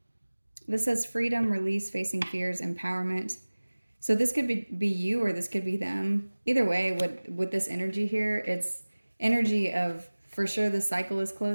This says freedom, release, facing fears, empowerment. So this could be you, or this could be them. Either way, with this energy here, it's energy of, for sure, the cycle is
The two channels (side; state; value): both; inverted; correlation -1.00